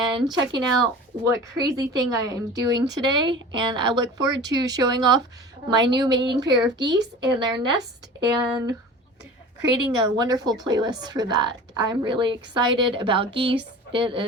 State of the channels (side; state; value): both; normal; correlation 0.38